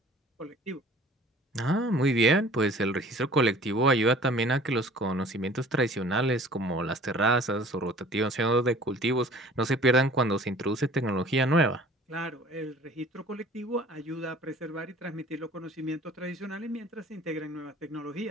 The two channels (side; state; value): both; normal; correlation 0.49